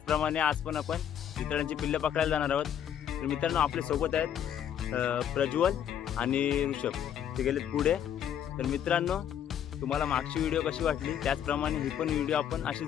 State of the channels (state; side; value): quieter; right; 9.5 dB